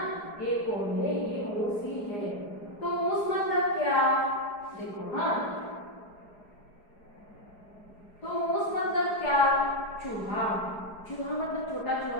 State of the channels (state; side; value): late; right; 4.8 ms